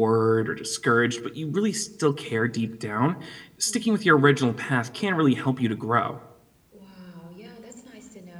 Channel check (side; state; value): both; identical; correlation 1.00